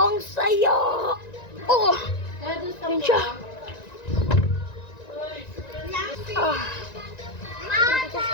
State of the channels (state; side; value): late; right; 1.9 ms